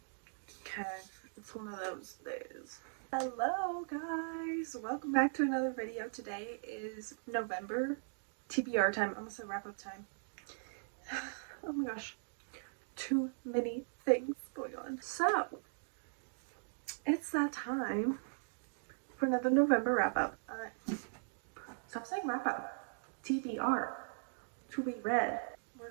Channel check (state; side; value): silent; left; digital silence